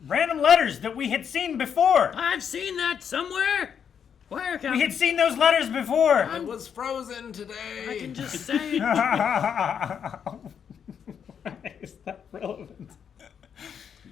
random letters that we had seen before. I've seen that somewhere. Where, Calvin? We had seen those letters before. It was frozen today. I can just say it. Why is that relevant? You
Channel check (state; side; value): quieter; right; 7.7 dB